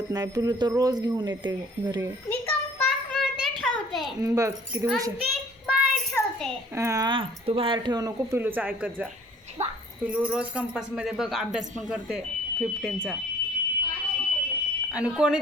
नाही. पिलू तर रोज घेऊन येते घरी. मी कंपास मध्ये ठेवते. बघ किती हुशार. ती बाहेर ठेवते. हां तू बाहेर ठेवू नको. पिलूचं ऐकत जा. बा. पिलू रोज कंपासमध्ये बघ अभ्यास पण करते 15चा. आणि कोणी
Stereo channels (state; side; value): normal; both; correlation 0.54